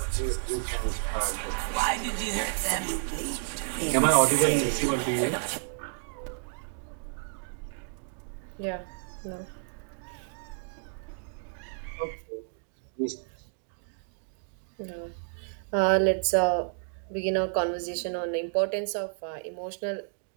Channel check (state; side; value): silent; left; digital silence